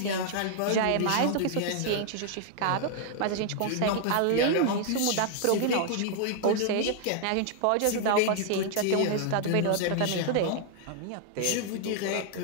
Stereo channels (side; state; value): both; different; correlation -0.01